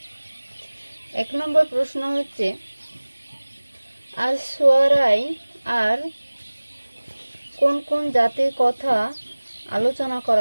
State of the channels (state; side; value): inverted; both; correlation -1.00